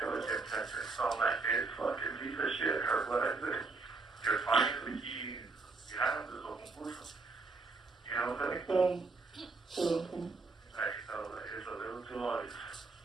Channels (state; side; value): quieter; left; 3.8 dB